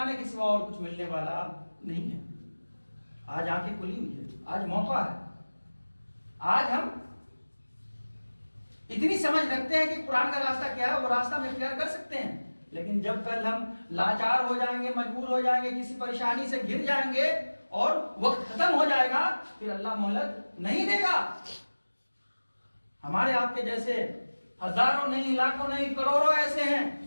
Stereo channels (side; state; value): both; inverted; correlation -1.00